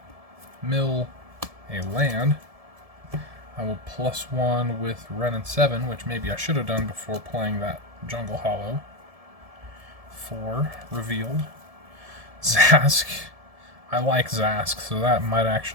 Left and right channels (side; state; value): left; late; 1.7 ms